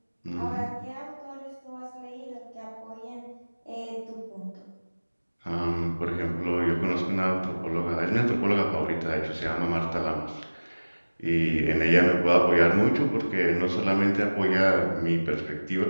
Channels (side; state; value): both; inverted; correlation -1.00